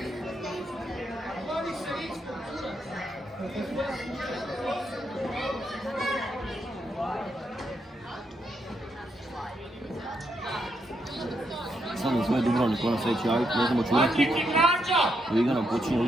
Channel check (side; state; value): both; normal; correlation 0.79